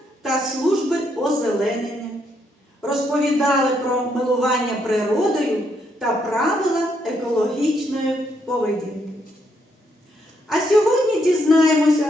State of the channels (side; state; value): both; normal; correlation 0.75